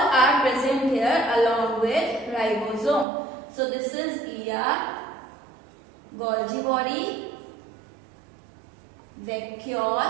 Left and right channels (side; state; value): left; drops out; at 3.1 s